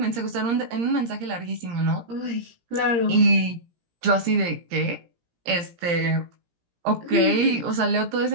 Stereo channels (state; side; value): late; left; 17 ms